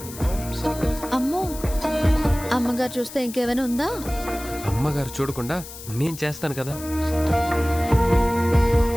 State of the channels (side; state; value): left; noise; hiss, 14 dB below the sound